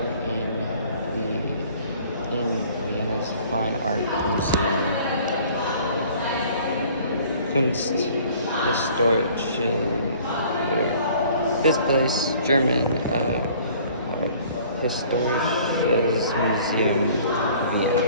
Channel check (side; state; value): both; inverted; correlation -0.52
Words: in Vienna's Fine Art Museum. Kunsthistorische. This place, German Historisches Museum,